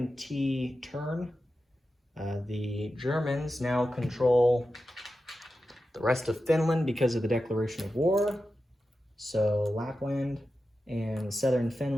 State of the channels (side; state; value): both; normal; correlation 0.91